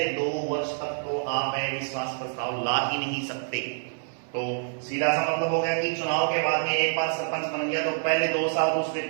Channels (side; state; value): left; silent; 59 dB below the other